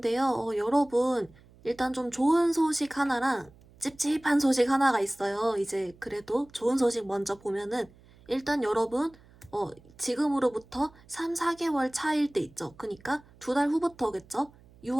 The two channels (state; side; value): noise; right; hum, 26 dB below the sound